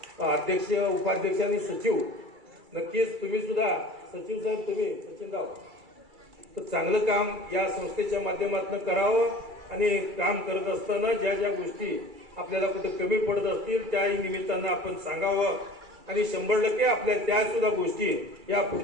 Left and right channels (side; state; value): left; late; 2.3 ms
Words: अध्यक्ष, उपाध्यक्ष आणि सचिव, नक्कीच तुम्ही सुद्धा, सचिव साहेब तुम्ही, सचिनराव, तर चांगलं काम या संस्थेच्या माध्यमातून करावं. आणि काम करत असताना ज्या ज्या गोष्टी आपल्याला कुठे कमी पडत असतील त्याही निमित्तानं आपण सांगावं. आणि 100% आपल्या त्या सुद्धा गोष्टी या